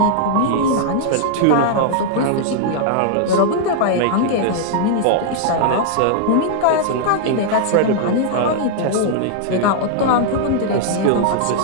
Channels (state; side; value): different; both; correlation -0.01